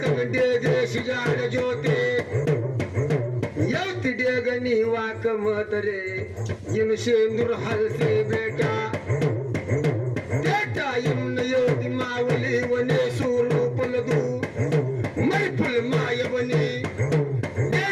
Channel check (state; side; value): identical; both; correlation 1.00